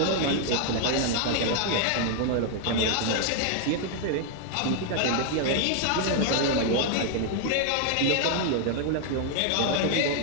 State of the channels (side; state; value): both; different; correlation 0.00